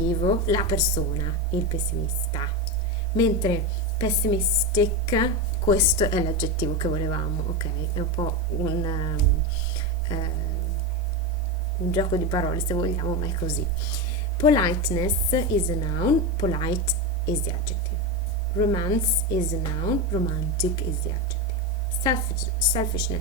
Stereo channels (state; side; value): normal; both; correlation 0.15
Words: la persona, il pessimista. Mentre pessimistic, questo è l'aggettivo che volevamo, ok? È un po' un gioco di parole se vogliamo, ma è così. Politeness is a noun, polite is the adjective. Romance is a noun, romantic is the adjective.